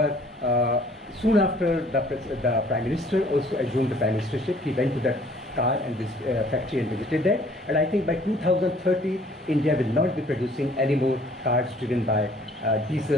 soon after the Prime Minister also assumed the Prime Ministership, he went to that car and this factory and visited that. And I think by 2030, India will not be producing any more cars driven by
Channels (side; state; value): both; normal; correlation 0.57